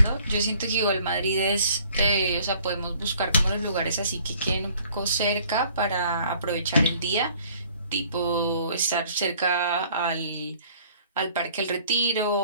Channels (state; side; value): inverted; both; correlation -0.57